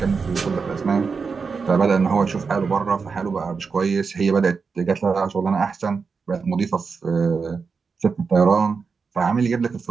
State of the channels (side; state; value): left; quieter; 5.1 dB